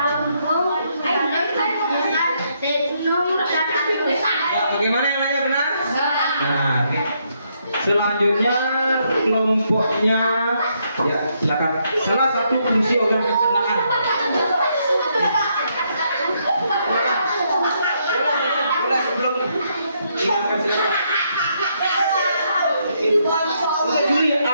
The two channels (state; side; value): inverted; both; correlation -0.75